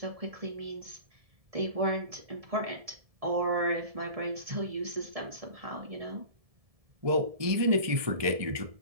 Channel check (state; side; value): late; left; 1.7 ms